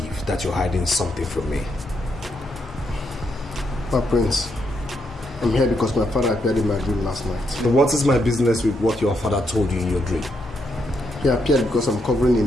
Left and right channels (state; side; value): normal; both; correlation 0.79